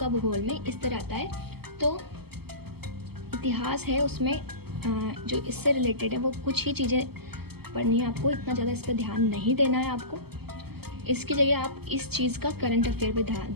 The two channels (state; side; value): late; left; 0.96 ms